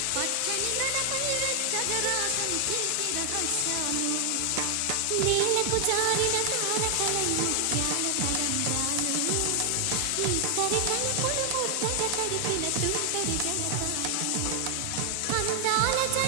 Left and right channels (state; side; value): different; both; correlation 0.00